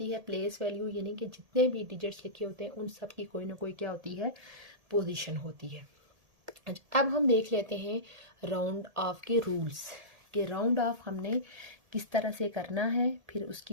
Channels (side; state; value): left; late; 1.8 ms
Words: है प्लेस वैल्यू, यानी कि जितने भी डिजिट्स लिखे होते हैं उन सब की कोई ना कोई क्या होती है, पोजीशन होती है। अब हम देख लेते हैं राउंड ऑफ के रूल्स कि राउंड ऑफ हमने किस तरह से करना है, फिर